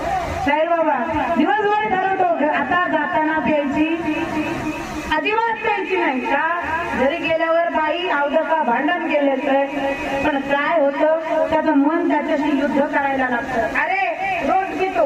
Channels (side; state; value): both; identical; correlation 1.00